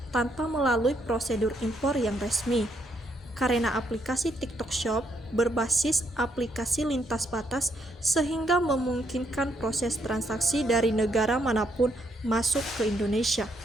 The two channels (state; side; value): normal; both; correlation 0.74